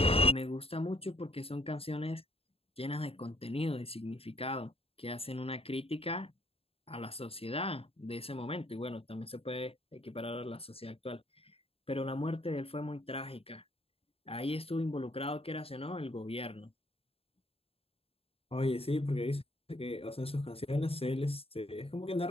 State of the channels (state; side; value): late; right; 0.28 ms